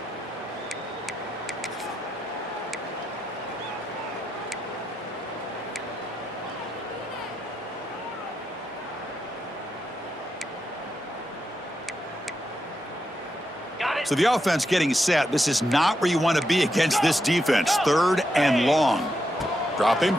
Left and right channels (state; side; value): normal; both; correlation 0.84